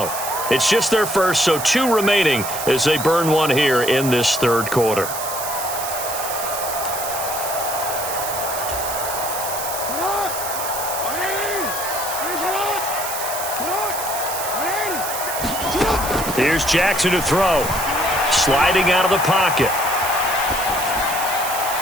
It's just their first, so 2 remaining as they burn one here in this third quarter. Here's Jackson to throw. Sliding out of the pocket.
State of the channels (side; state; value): right; noise; hiss, 6 dB below the sound